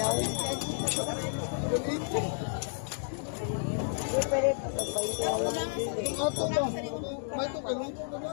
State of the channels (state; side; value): silent; right; digital silence